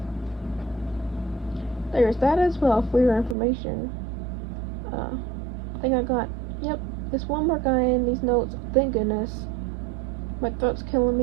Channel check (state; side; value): drops out; left; at 3.4 s